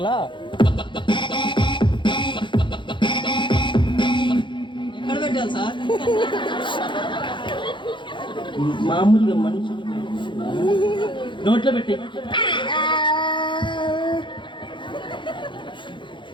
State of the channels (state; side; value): late; right; 0.23 ms